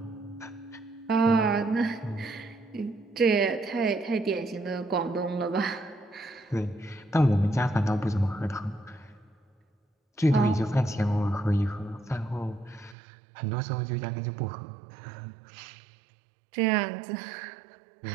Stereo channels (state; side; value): drops out; left; at 13.0 s